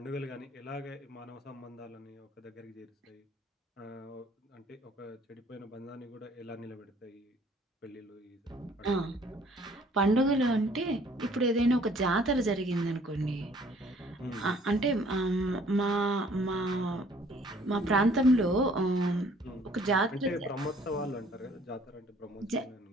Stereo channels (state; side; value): normal; both; correlation 0.58